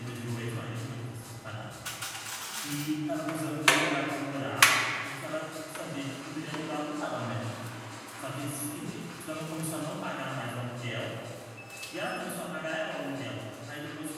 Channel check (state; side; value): identical; both; correlation 1.00